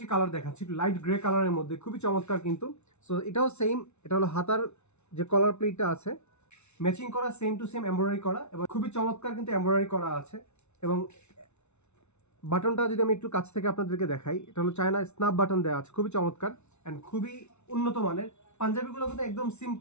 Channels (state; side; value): late; right; 0.82 ms